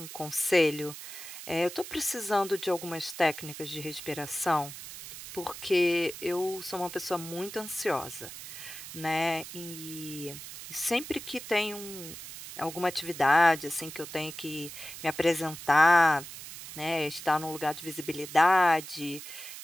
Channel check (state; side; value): noise; right; hiss, 12 dB below the sound